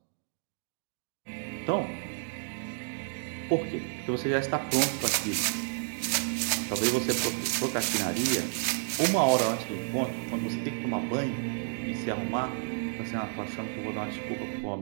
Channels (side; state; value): left; silent; 57 dB below the other